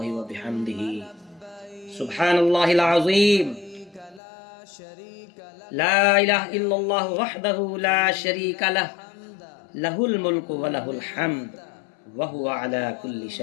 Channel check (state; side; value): drops out; right; at 4.2 s